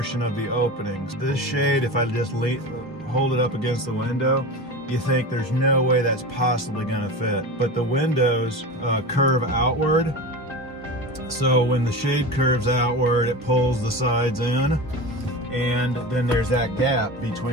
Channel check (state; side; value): normal; both; correlation 0.28